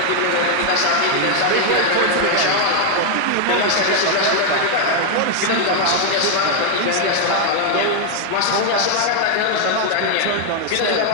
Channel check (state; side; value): different; both; correlation 0.00